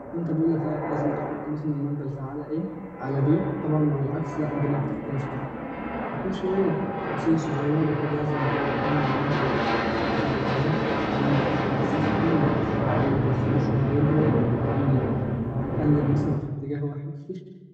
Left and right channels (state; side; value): identical; both; correlation 1.00